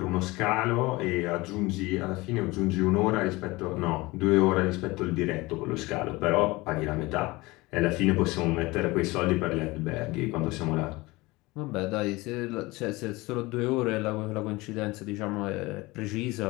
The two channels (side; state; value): right; quieter; 21.8 dB